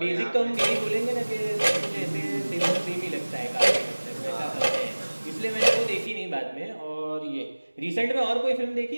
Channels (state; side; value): inverted; both; correlation -1.00